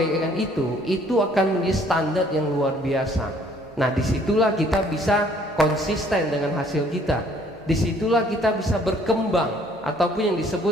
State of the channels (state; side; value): normal; both; correlation 0.60